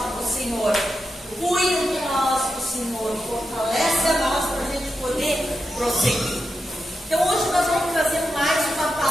o Senhor cuida de nós, o Senhor fortalece a nós para a gente poder prosseguir. Então, hoje nós vamos trazer mais uma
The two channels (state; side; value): normal; both; correlation 0.87